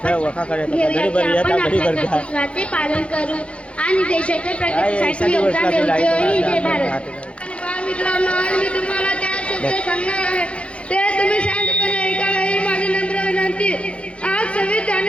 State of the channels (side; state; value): right; late; 0.060 ms